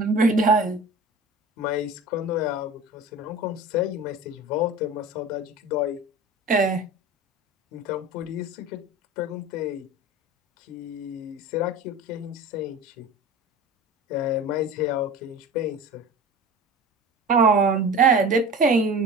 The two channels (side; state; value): both; normal; correlation 0.36